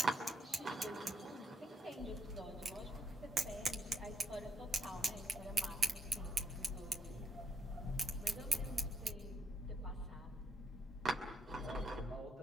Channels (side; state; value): both; normal; correlation 0.76